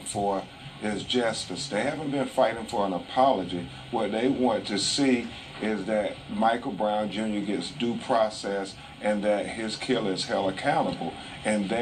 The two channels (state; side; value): identical; both; correlation 1.00